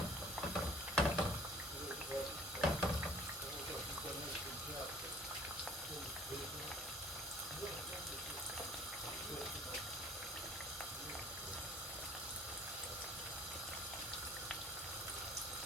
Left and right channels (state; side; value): normal; both; correlation 0.53